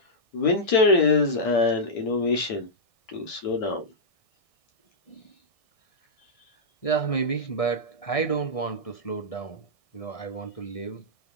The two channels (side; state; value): right; late; 1.6 ms